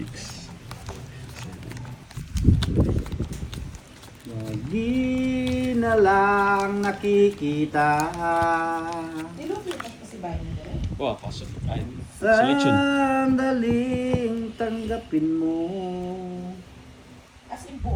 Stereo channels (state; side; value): identical; both; correlation 1.00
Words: 7. Lagi na lang nakikita Nilupit pa si Bayan ni Derek. Wow, pasok. Ay, selection. sandaling tanggapin mo. As in